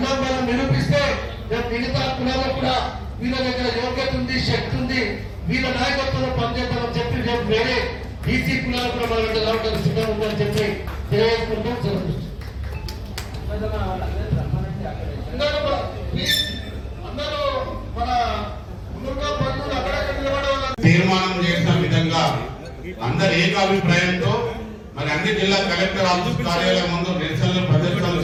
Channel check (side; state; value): both; identical; correlation 1.00